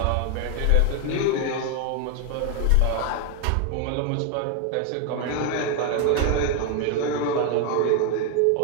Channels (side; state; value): both; different; correlation 0.01